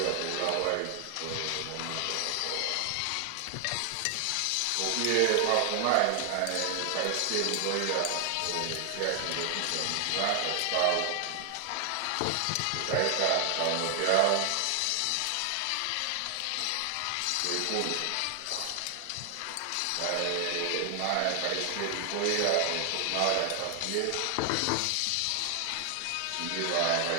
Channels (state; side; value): different; both; correlation 0.00